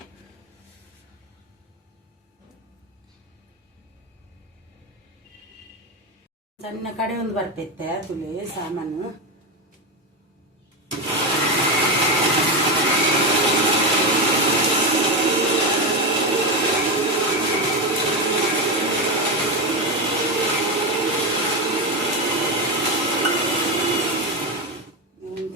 ಸಣ್ಣ ಕಡೆ ಒಂದು ಬರ್ಪೈತೆ ತುಳಿ ಸಾಮಾನು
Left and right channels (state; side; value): normal; both; correlation 0.13